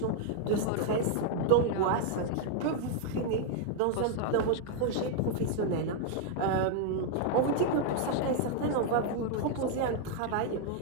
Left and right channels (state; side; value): different; both; correlation 0.00